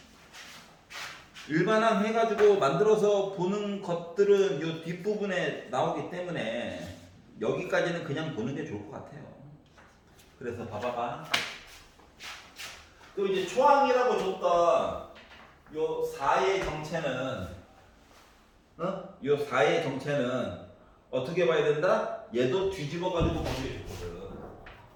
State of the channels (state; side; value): identical; both; correlation 1.00